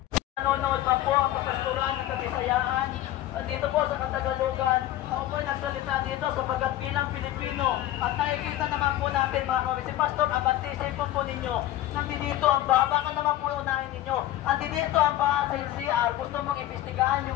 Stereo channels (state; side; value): quieter; right; 14.2 dB